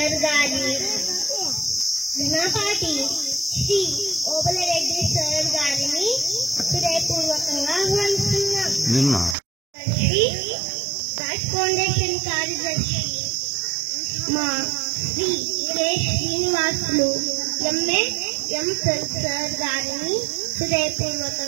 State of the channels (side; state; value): left; drops out; at 9.3 s